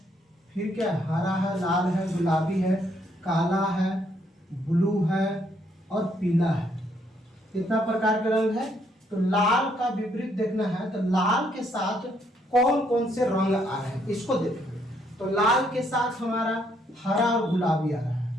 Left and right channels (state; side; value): normal; both; correlation 0.71